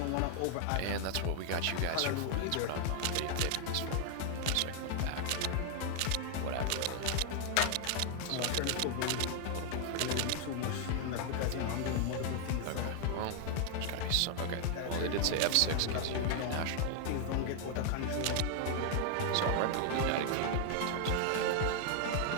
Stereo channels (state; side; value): different; both; correlation 0.00